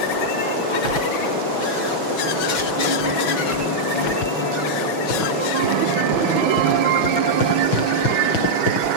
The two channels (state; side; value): late; right; 6.1 ms